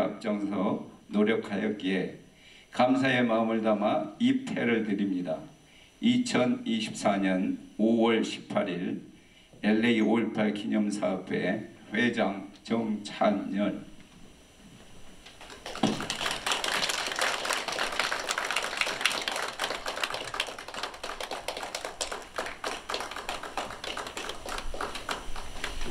노력하였기에 감사의 마음을 담아 이 패를 드립니다. 2024년 5월 18일 LA 5.18 기념사업회 회장 정찬열.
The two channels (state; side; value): identical; both; correlation 1.00